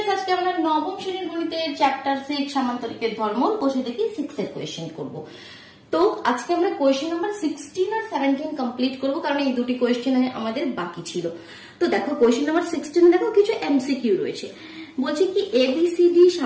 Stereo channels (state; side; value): identical; both; correlation 1.00